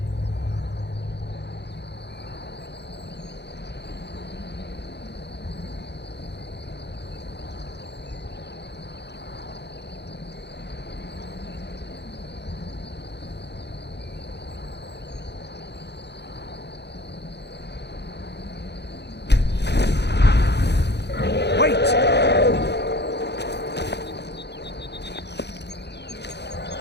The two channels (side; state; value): right; late; 0.49 ms